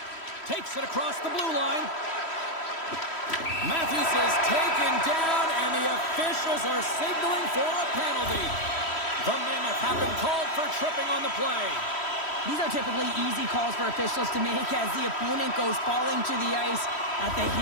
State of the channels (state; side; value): late; right; 3.1 ms